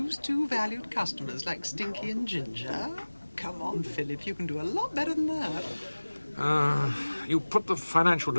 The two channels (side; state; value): both; inverted; correlation -1.00